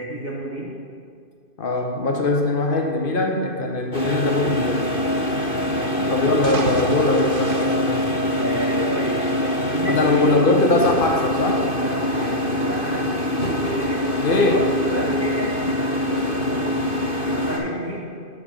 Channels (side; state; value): right; late; 2.5 ms